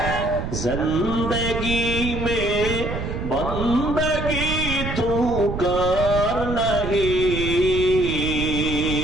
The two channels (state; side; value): noise; right; rumble, 5 dB below the sound